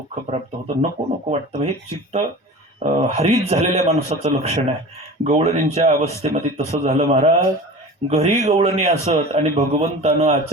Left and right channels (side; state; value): both; normal; correlation 0.36